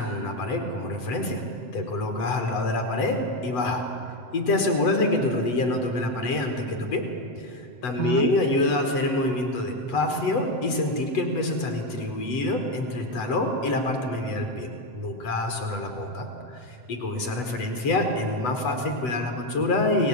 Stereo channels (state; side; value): late; right; 8.1 ms